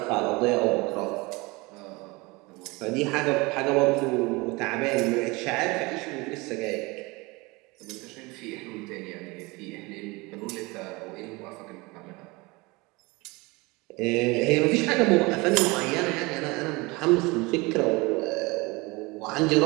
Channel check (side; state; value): left; quieter; 24.5 dB